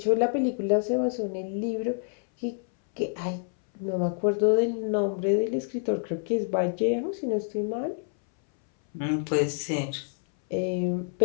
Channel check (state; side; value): silent; right; 59 dB below the other